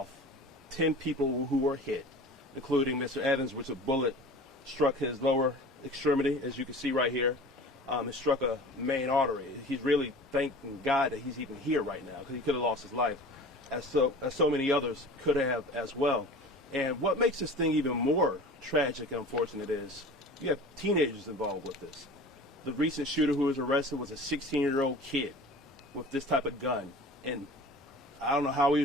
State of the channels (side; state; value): both; normal; correlation 0.39